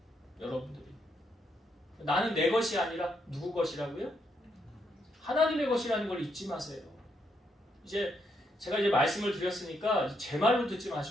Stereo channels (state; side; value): normal; both; correlation 0.77